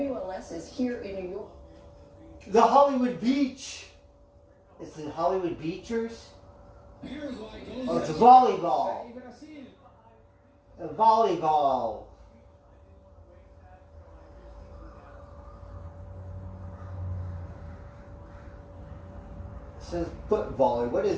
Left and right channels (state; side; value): identical; both; correlation 1.00